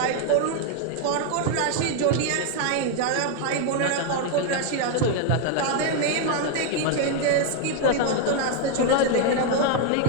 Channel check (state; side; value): different; both; correlation 0.00